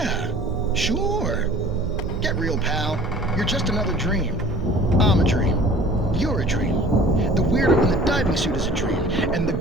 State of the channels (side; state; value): both; normal; correlation 0.47